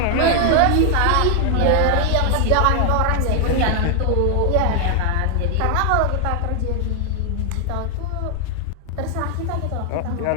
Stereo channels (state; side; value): different; both; correlation 0.00